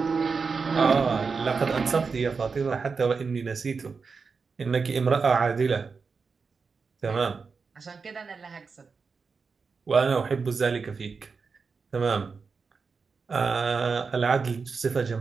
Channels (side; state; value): left; quieter; 5.0 dB